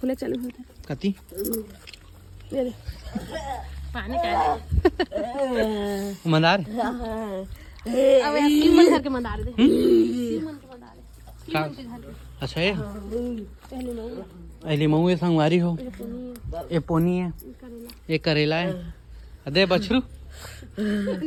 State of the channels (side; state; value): both; identical; correlation 1.00